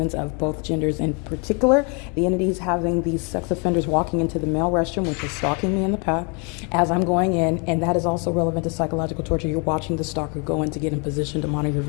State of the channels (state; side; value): quieter; right; 34.7 dB